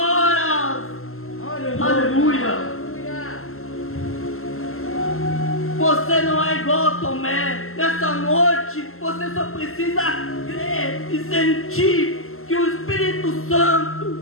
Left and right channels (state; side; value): late; right; 0.62 ms